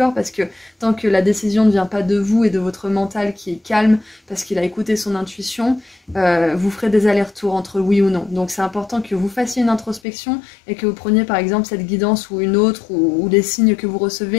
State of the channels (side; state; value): right; drops out; at 10.0 s